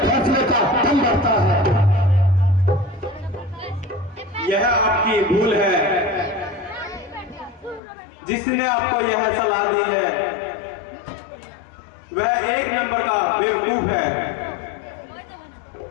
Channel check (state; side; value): drops out; right; at 7.8 s